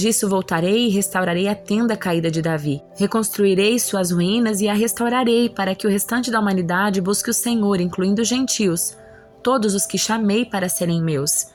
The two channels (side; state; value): both; identical; correlation 1.00